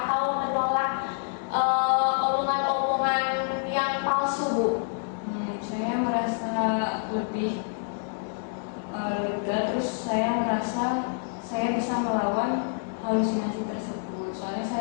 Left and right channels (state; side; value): silent; right; digital silence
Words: menolak omongan-omongan yang palsu Bu? Saya merasa lebih lega, terus saya merasa saya bisa melawan halusinasi tersebut. Soalnya